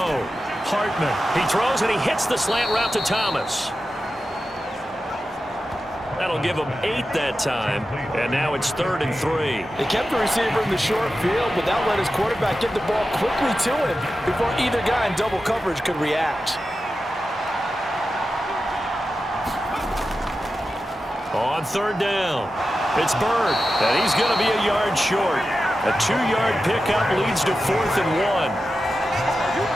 Hartman. He throws and he hits the slant route to Thomas. That'll give him 8 that time. And now it's 3rd and 3. They kept the receiver in the short field, but that let his quarterback get the ball quickly to him before either guy in double coverage could react. On 3rd down, it's Bird, and he's going to be a yard short. A 2-yard pickup leads to 4th and 1.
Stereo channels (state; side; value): normal; both; correlation 0.92